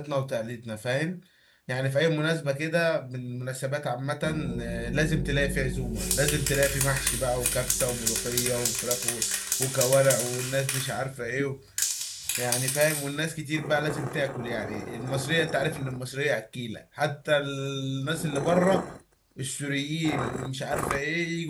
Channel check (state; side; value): identical; both; correlation 1.00